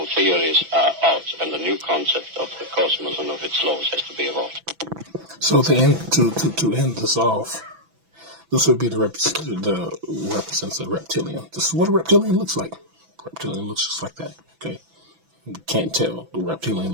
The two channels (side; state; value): left; late; 6.0 ms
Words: theories are out, and the new concept of the cosmos and of its laws has to be evolved. So to end this off, this would be the represents a reptilian. This is what a reptilian looks like. Reptilian looks just like that. Okay, you can't tell. The reptilian